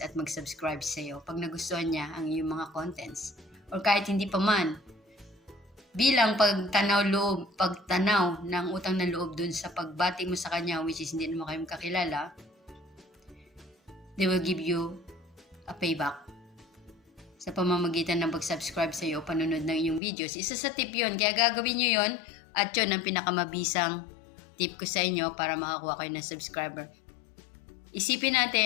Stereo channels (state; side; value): drops out; right; at 20.0 s